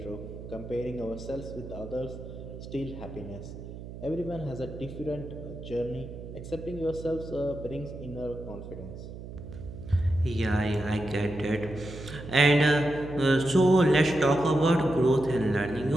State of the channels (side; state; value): right; noise; hum, 12 dB below the sound